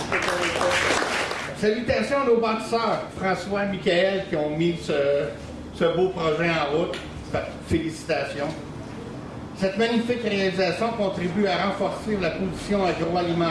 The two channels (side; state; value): both; identical; correlation 1.00